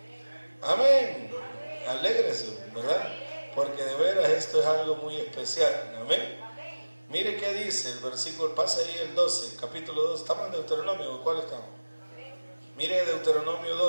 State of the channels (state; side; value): inverted; both; correlation -1.00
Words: Amén. Alégrese, ¿verdad? Porque de veras esto es algo muy especial. Amén. Mire qué dice el versículo, pasa ahí el 12, capítulo 2. ¿Estamos en Deuteronomio o cuál estamos? Mire Deuteronomio